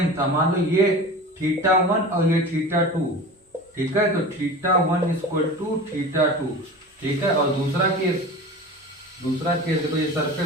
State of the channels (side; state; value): both; normal; correlation 0.34